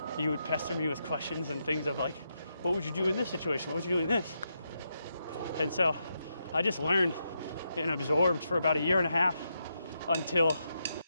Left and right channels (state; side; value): inverted; both; correlation -0.83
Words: you would pester me with questions and things of like, what would you do in this situation? What would you do in this? And so I just learned and absorbed for about a year and a half until